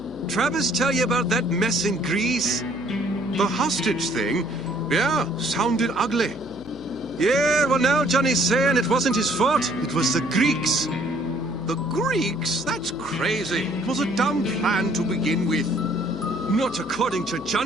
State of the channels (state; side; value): noise; left; hum, 18 dB below the sound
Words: Travis tell you about that mess in Greece? The hostage thing? Yeah, sounded ugly. Yeah, well now Johnny's saying it wasn't his fault. It was the Greeks. The Greeks? That's crazy. It was a dumb plan to begin with. Not according to